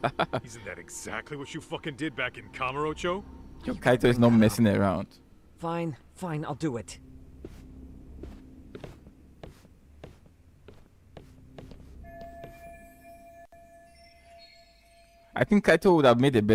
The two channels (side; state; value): both; identical; correlation 1.00